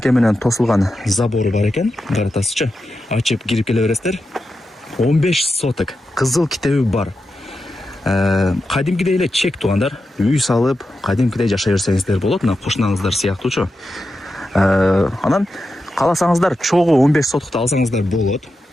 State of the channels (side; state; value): both; normal; correlation 0.89